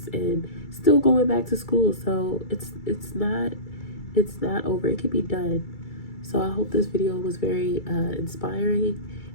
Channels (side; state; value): right; late; 2.3 ms